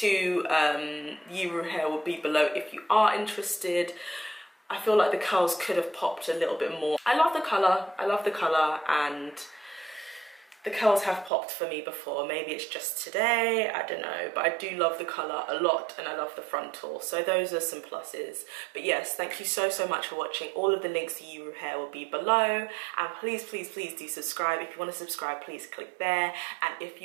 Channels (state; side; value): drops out; left; at 11.3 s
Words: Yiroo hair will be below if you are interested. I feel like the curls could have popped a little bit more. I love the colour, and the curls have popped for me before. Maybe it's just today, I don't know, but I do love the colour a lot, and I love the frontal, so those are some pluses. But yes, thank you so much for watching. All of the links to Yiroo hair will be below, and please do subscribe. If you want to subscribe, please click there, and if